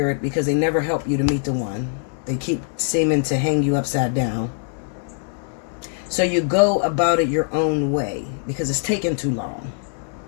because they never help you to meet the one. They keep seeming to hang you upside down. So you go about it your own way because it's taking too long.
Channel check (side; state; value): right; silent; 60 dB below the other